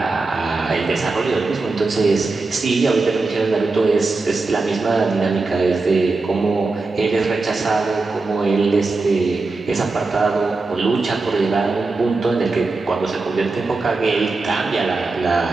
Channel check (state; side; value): quieter; left; 3.7 dB